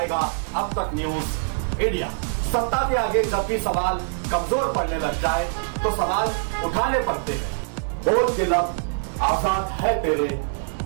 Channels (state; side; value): silent; left; digital silence